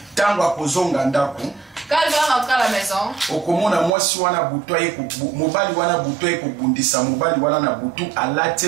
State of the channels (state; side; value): drops out; left; at 3.9 s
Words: quand il va rentrer à la maison,